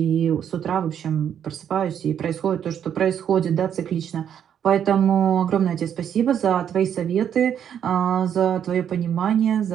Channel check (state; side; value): quieter; left; 9.0 dB